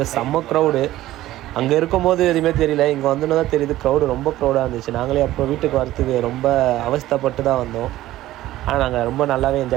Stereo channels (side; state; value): left; quieter; 15.2 dB